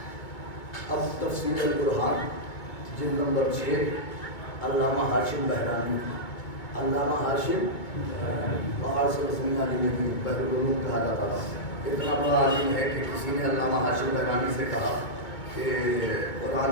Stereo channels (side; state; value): right; late; 2.2 ms